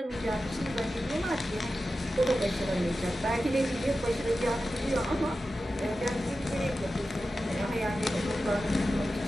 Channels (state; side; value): normal; both; correlation 0.93